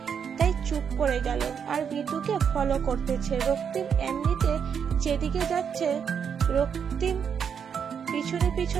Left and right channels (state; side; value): quieter; left; 7.3 dB